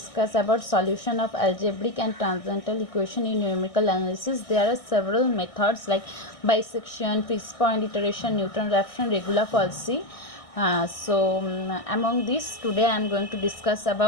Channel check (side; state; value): right; late; 1.6 ms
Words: about solution of algebraic and transcendental equation in numerical analysis. There are several methods like bisection, fixed point iteration, Newton-Raphson, regular falsy. Among these, today I am going to discuss